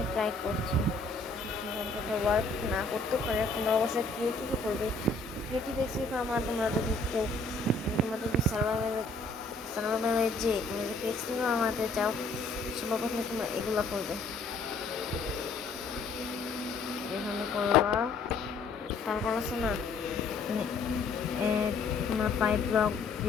ট্রাই করছি, ওয়ার্ক না করতেও পারে। তোমরা অবশ্যই ক্রিয়েটিভই করবে। ক্রিয়েটিভ এক্সপি ফর্ম আর তোমরা যদি কেউ তোমরা যদি সার্ভাইভালে যে তুমি যদি এক্সপি ফর্ম বানাতে চাও সবার প্রথমে তোমরা এগুলো করবে, এখানে করবা। তারপর আছে না তোমরা 5 ব্লক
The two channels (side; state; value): right; quieter; 3.6 dB